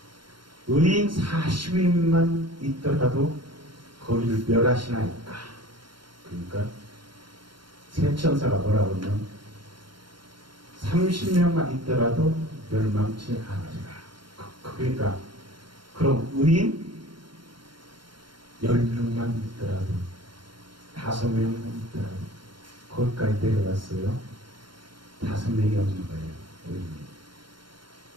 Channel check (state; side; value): late; left; 0.72 ms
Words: 의인 40인만 있더라도 거기를 멸하시나이까. 그러니까 새 천사가 뭐라고 하면 30명만 있더라도 멸망치 않으리라. 그러니까 그럼 의인 10명만 있더라도 5명만 있더라도 거기까지 내려갔어요. 5명이 없는 거예요. 의인이.